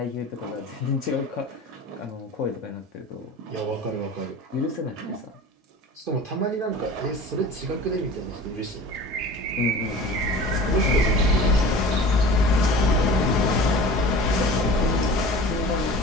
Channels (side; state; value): both; normal; correlation 0.39